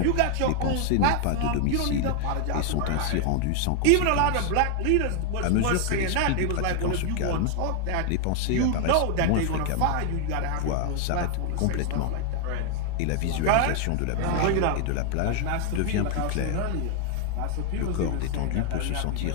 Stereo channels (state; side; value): different; both; correlation 0.00